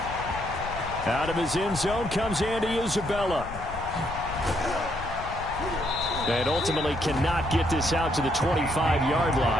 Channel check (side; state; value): left; noise; rumble, 11 dB below the sound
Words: Out of his end zone comes Andy Isabella. And ultimately cannot get this out to the 25-yard